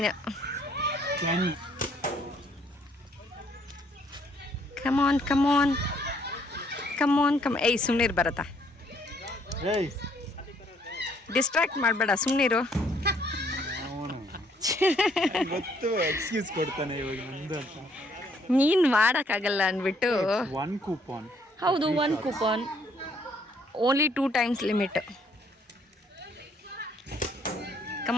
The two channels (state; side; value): normal; both; correlation 0.66